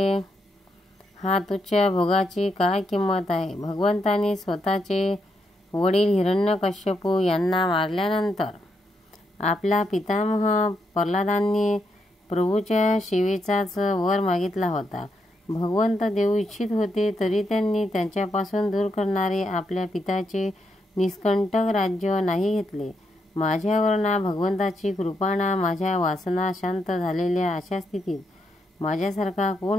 हा तुच्छ भोगाची काय किंमत आहे. भगवंतांनी स्वतःचे वडील हिरण्यकश्यपू यांना मारल्यानंतर आपला पितामह प्रल्हादांनी प्रभूच्या सेवेचाच वर मागितला होता. भगवंत देऊ इच्छित होते तरी त्यांनी त्यांच्यापासून दूर करणारे आपल्या पित्याचे निष्कंटक राज्य नाही घेतले. माझ्यावर ना भगवंताची कृपा ना माझ्या वासना शांत झालेल्या अशा स्थितीत माझ्यासारखा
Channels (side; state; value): both; normal; correlation 0.80